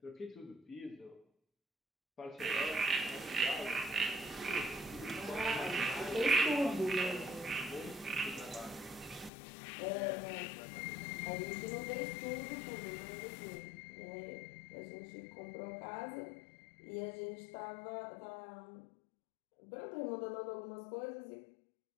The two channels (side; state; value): right; drops out; at 9.3 s